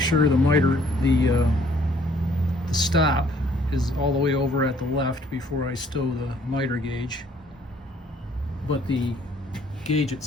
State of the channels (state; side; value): normal; both; correlation 0.61